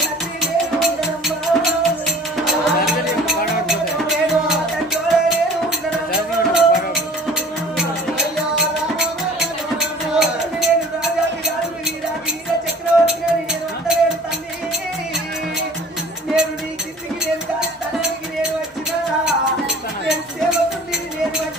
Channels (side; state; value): both; normal; correlation 0.46